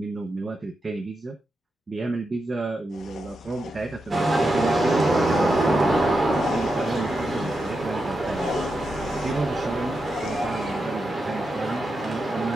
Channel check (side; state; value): both; normal; correlation 0.87